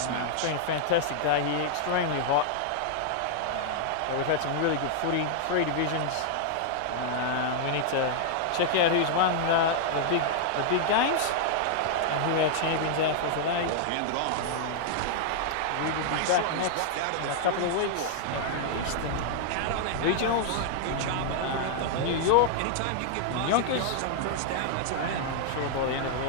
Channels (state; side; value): different; both; correlation -0.01